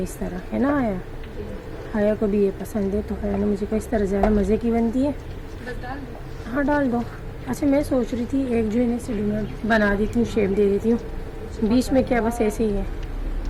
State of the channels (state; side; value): identical; both; correlation 1.00